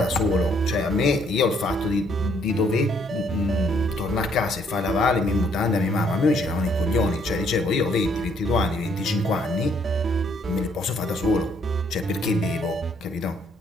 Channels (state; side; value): normal; both; correlation 0.67